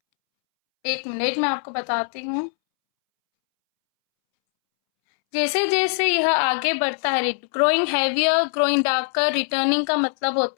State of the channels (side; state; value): right; silent; 64 dB below the other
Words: एक मिनट मैं आपको बताती हूँ. जैसे जैसे यह आगे बढ़ता है, growing heavier, growing darker, returning का मतलब